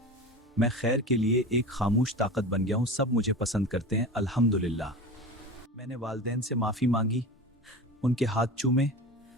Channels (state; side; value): normal; both; correlation 0.31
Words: मैं खैर के लिए एक खामोश ताकत बन गया हूँ। सब मुझे पसंद करते हैं, अल्हम्दुलिल्लाह। मैंने वालिदैन से माफ़ी मांगी, उनके हाथ चूमे